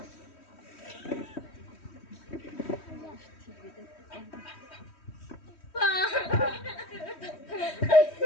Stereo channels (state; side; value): late; right; 3.1 ms